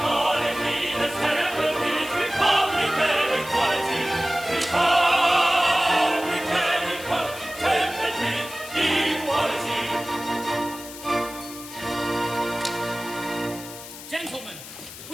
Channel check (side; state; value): left; noise; hiss, 14 dB below the sound